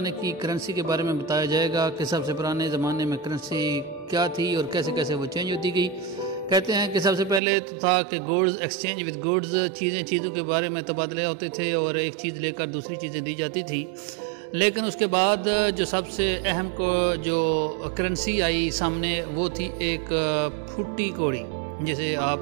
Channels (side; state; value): left; drops out; at 7.4 s